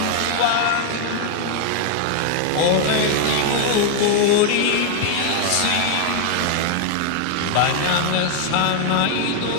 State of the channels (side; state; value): both; different; correlation 0.00